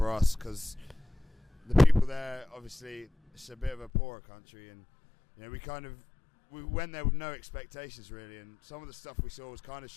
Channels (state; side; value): drops out; right; at 3.9 s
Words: us, because the people there, obviously, it's a bit of a poorer country, and we went there with no expectations really, and some of the stuff we saw was kind of